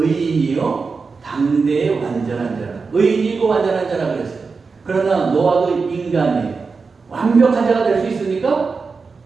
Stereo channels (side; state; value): left; quieter; 4.7 dB